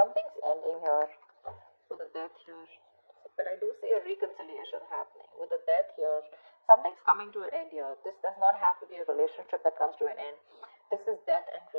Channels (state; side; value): inverted; both; correlation -1.00